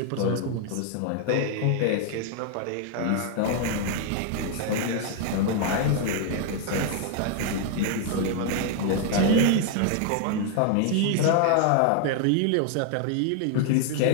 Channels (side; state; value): both; different; correlation 0.00